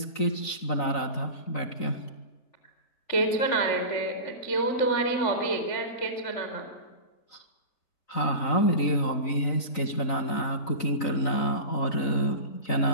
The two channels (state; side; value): late; right; 3.9 ms